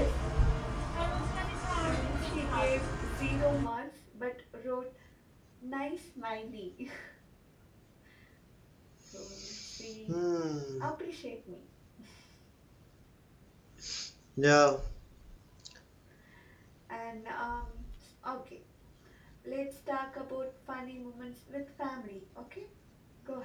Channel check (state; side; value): identical; both; correlation 1.00